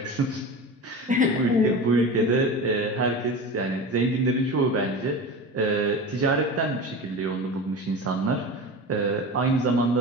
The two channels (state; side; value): normal; both; correlation 0.30